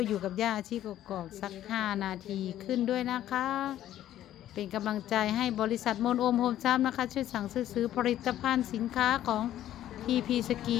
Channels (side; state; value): right; quieter; 12.4 dB